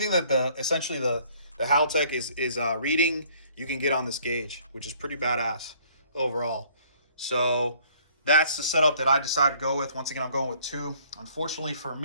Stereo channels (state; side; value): inverted; both; correlation -0.59